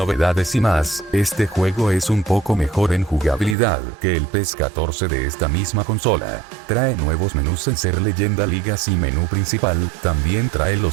y más. Este juego es un poco mejor en jugabilidad que el PES 14 de esta misma consola. Trae nuevos menús en Ser Leyenda Ligas y menú principal, también trae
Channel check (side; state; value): left; drops out; at 3.6 s